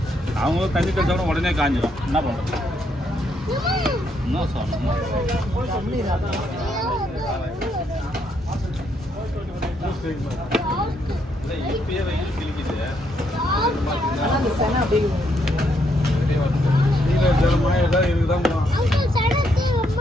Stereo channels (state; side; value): normal; both; correlation 0.75